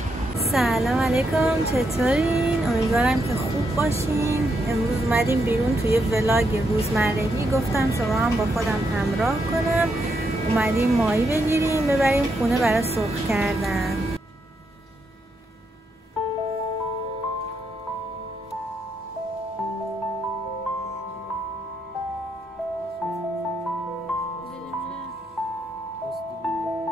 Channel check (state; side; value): normal; both; correlation 0.80